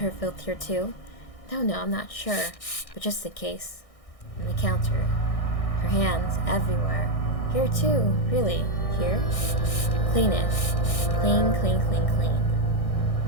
filth here too? No, I'm not sure. But just in case. On the counter. Her hands everywhere. Here too, really. Here? Clean it. Clean, clean, clean, clean.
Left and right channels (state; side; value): late; right; 1.6 ms